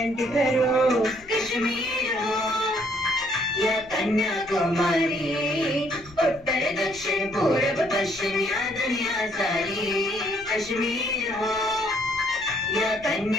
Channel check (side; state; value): left; noise; rumble, 22 dB below the sound